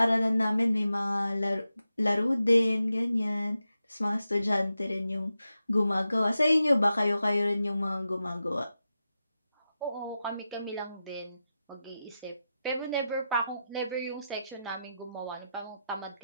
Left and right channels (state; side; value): inverted; both; correlation -0.90